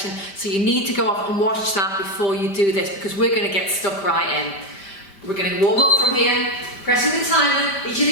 so you need to go off and watch that before you do this, because we're going to get stuck right in. We're going to warm up from here, pressing the timer. Each of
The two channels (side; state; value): right; late; 5.1 ms